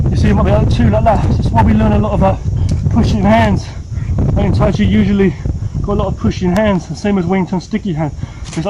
You see, it might be like two like that. That's why we learn a lot about pushing hands. In TAIJI usually got a lot of pushing hands, the same as Wing Chun sticky hand. It's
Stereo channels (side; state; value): both; identical; correlation 1.00